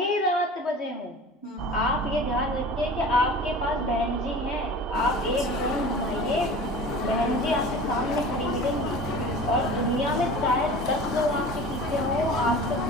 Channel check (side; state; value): both; normal; correlation 0.39